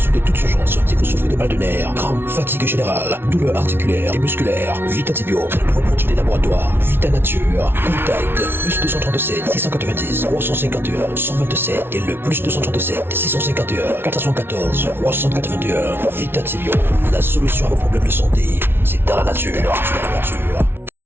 toute urgence si vous souffrez de mal de nerfs, crampes, fatigue générale, douleurs articulaires et musculaires. Vitatibio, c'est le nouveau produit des laboratoires Vita Nature. Contact plus 237 690 351 127 et le plus 237 651 414 381. Vitatibio, la solution à vos problèmes de santé, c'est dans la nature.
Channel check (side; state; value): left; late; 0.11 ms